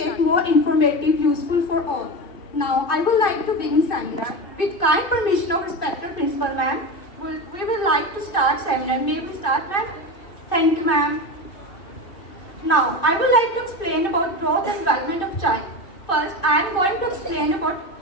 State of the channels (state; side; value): late; right; 2.5 ms